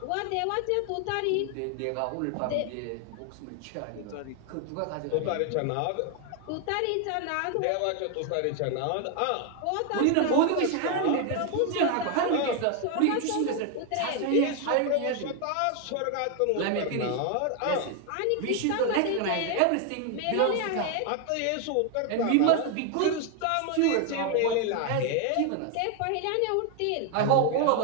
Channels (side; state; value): both; different; correlation 0.01